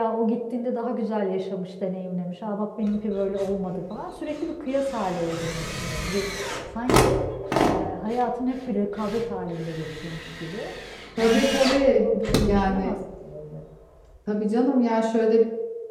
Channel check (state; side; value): identical; both; correlation 1.00